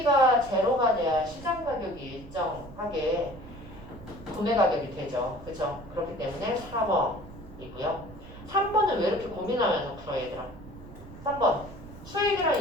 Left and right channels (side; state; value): right; noise; rumble, 16 dB below the sound